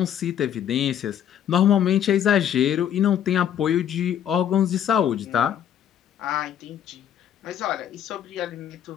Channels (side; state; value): right; quieter; 9.8 dB